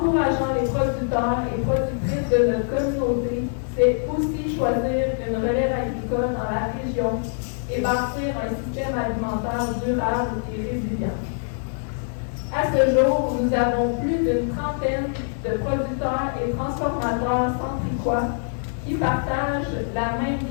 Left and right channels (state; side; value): silent; right; digital silence